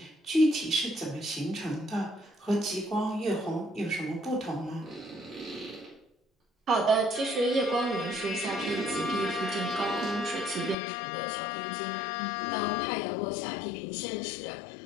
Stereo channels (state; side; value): drops out; right; at 10.8 s